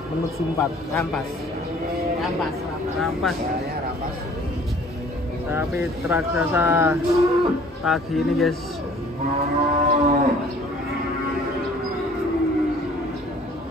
Menuju 4. Rampas. Rampas. Ya, rampas. Tapi raksasa pagi ini, guys.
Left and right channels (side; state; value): both; normal; correlation 0.53